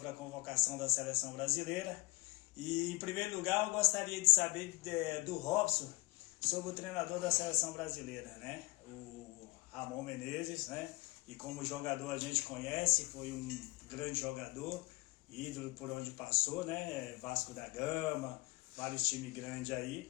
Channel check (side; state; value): right; quieter; 23.9 dB